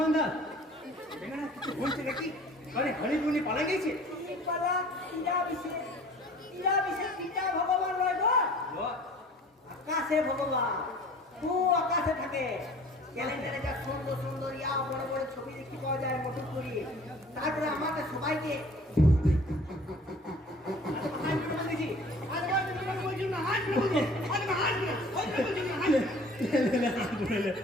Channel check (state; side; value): normal; both; correlation 0.48